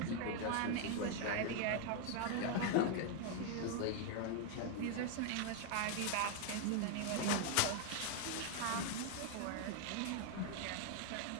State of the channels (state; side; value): different; both; correlation 0.00